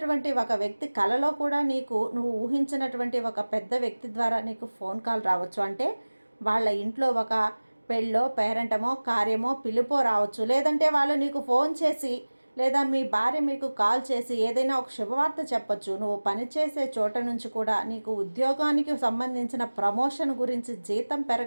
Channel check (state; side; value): inverted; both; correlation -1.00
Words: ఒక వ్యక్తి కలలో కూడా నువ్వు ఊహించినటువంటి ఒక పెద్ద వ్యక్తి ద్వారా నీకు ఫోన్ కాల్ రావచ్చు. అంటే వాళ్ళ ఇంట్లో ఒక పెళ్ళో, పేరెంటమో, కార్యమో, పిలుపో రావచ్చు. లేదంటే వాళ్ళు నీకు ఫోన్ చేసి లేదా మీ భార్య మీకు కాల్ చేసి ఏదైనా ఒక శుభవార్త చెప్పచ్చు. నువ్వు పనిచేసే చోట నుంచి కూడా నీకు ఉద్యోగానికి సంబంధించిన ప్రమోషన్ గురించి, జీతం